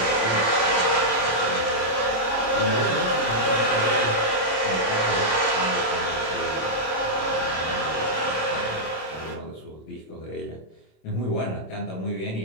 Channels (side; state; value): right; late; 26 ms